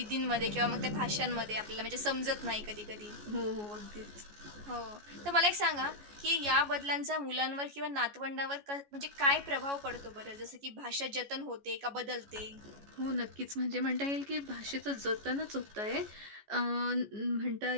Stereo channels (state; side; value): late; left; 14 ms